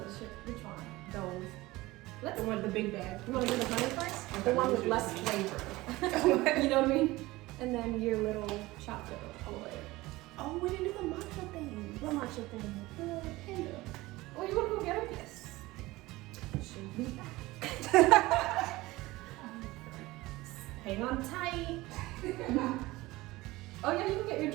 shit. Which one? Those. Let's. The one, the big bag. You want to do the honey first? Okay, The one with let's do less the flavor. You know what I mean? And then your little chocolate all the way. Oh, we didn't do the matcha thing. What matcha thing? The panda. Oh, you want to go get it? Yes. Should be back. Hang on tight. Oh yeah, you can get your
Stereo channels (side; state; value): left; quieter; 19.6 dB